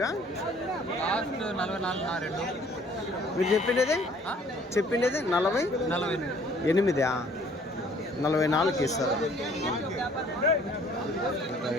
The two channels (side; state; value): both; normal; correlation 0.57